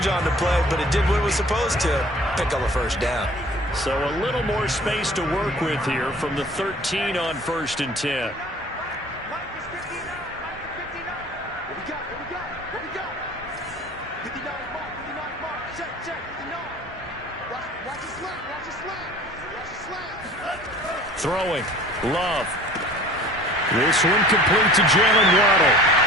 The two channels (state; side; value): normal; both; correlation 0.46